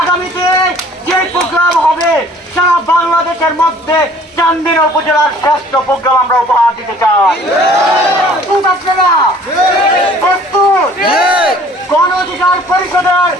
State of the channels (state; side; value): normal; both; correlation 0.53